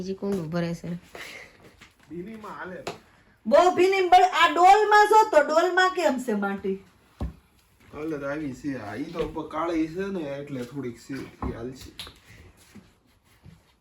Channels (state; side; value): identical; both; correlation 1.00